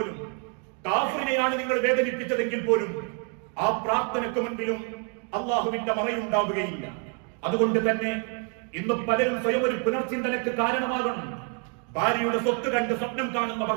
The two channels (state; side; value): quieter; left; 39.1 dB